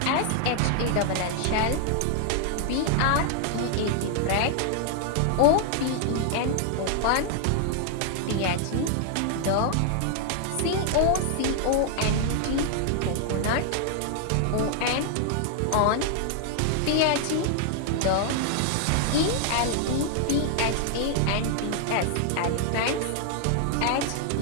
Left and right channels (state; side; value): different; both; correlation 0.00